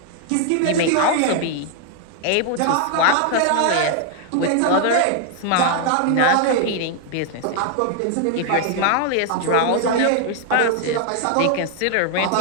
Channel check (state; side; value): different; both; correlation 0.00